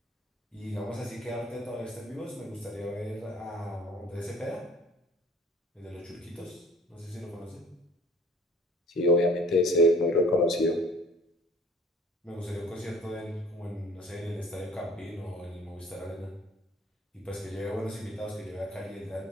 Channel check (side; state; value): both; normal; correlation 0.51